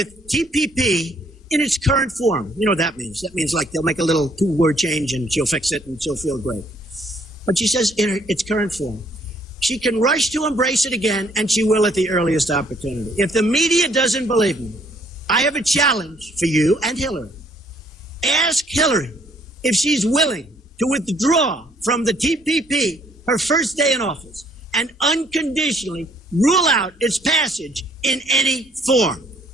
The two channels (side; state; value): both; normal; correlation 0.64